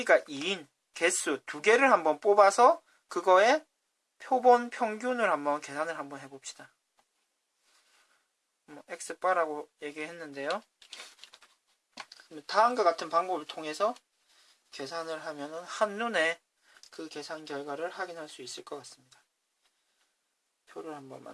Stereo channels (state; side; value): identical; both; correlation 1.00